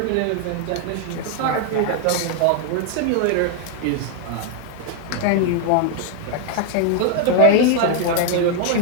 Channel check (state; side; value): different; both; correlation 0.00